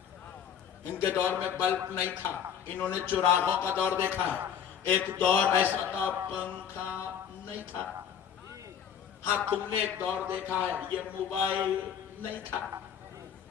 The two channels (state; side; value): quieter; right; 8.4 dB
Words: ان کے دور میں بلب نہیں تھا، انہوں نے چراغوں کا دور دیکھا ہے۔ ایک دور ایسا تھا پنکھا نہیں تھا، ہاں تم نے ایک دور دیکھا ہے یہ موبائل نہیں تھا،